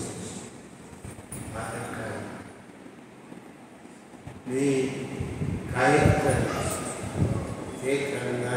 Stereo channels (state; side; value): identical; both; correlation 1.00